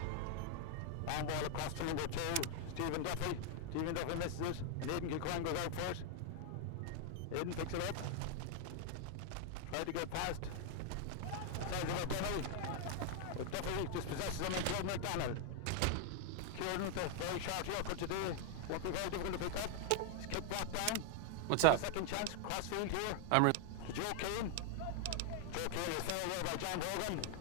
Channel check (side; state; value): both; different; correlation 0.00